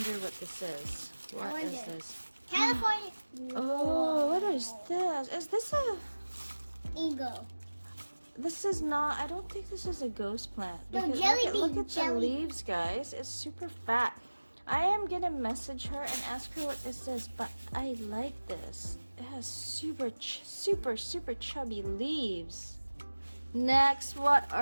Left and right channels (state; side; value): inverted; both; correlation -1.00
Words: what this is. What is this? California. Oh, what is this? Is this a... Ego. This is not... I don't think this is a ghost plant. No, Because jelly look bean, at the leaves, guys. It's super fat. I am gonna message her and ask her what this is, but I like this. It has super chubby leaves. Next, what